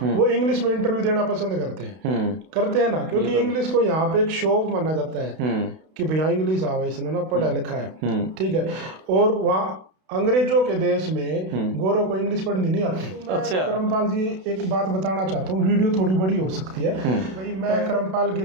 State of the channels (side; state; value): left; late; 32 ms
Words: वो इंग्लिश में इंटरव्यू देना पसंद करते हैं ना, क्योंकि इंग्लिश को यहाँ पे एक शो ऑफ माना जाता है कि भैया इंग्लिश आवा, इसने ना पढ़ा लिखा है, ठीक है। और वहाँ अंग्रेजों के देश में गोरों को इंग्लिश पढ़नी नहीं आती। अच्छा। करमपाल जी एक बात बताना चाहता हूँ, वीडियो थोड़ी बड़ी हो सकती है भाई। मैं करमपाल